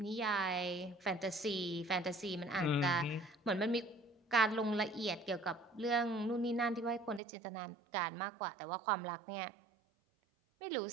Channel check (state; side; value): drops out; left; at 7.2 s